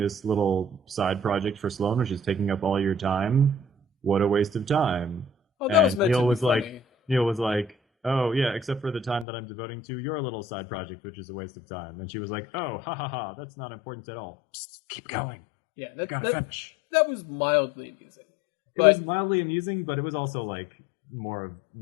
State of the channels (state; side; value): drops out; right; at 9.2 s